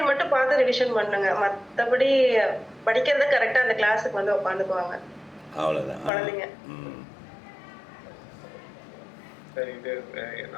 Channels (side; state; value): right; drops out; at 6.1 s